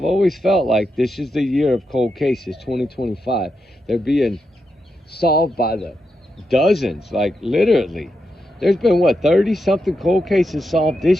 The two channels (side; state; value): both; normal; correlation 0.85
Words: always felt like this is the year of cold cases, 2025. They're being solved by the dozens, like literally. There's been 30 something cold cases solved